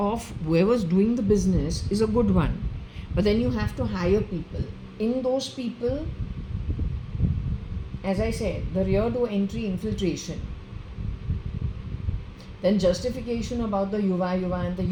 whoever's doing the business is a good one, but then you have to hire people. In those people, as I said, the rear door entry infiltration, then justification about the yuva and the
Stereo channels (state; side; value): identical; both; correlation 1.00